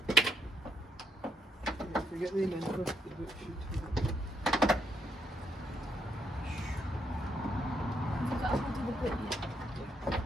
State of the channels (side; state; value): both; normal; correlation 0.74